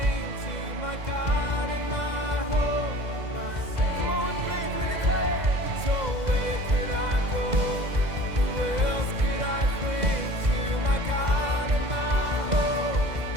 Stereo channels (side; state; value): left; late; 2.0 ms